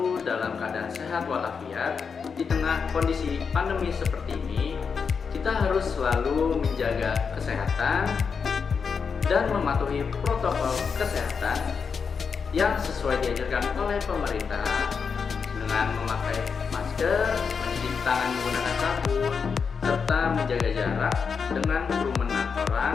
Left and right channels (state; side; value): quieter; right; 5.8 dB